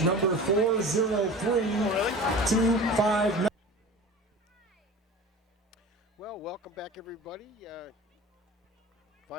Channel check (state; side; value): normal; both; correlation 0.36